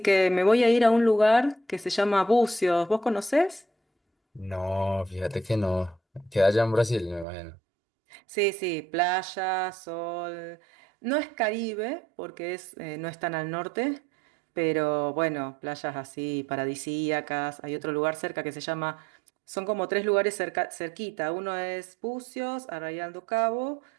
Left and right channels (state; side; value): drops out; left; at 7.2 s